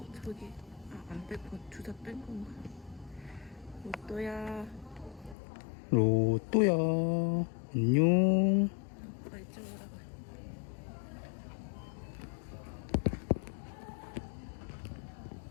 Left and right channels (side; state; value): right; drops out; at 5.4 s